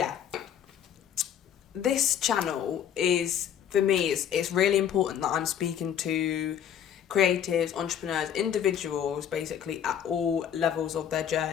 this channel is, for me, it's really important that I'm speaking to creatives, entrepreneurs, individuals, basically at all levels of their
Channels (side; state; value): right; quieter; 9.3 dB